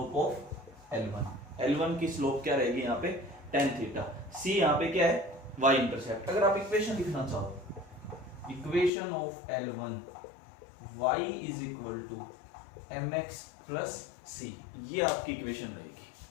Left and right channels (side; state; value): right; drops out; at 8.9 s